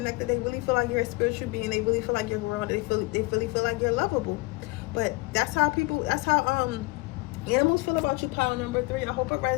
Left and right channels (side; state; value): right; quieter; 22.8 dB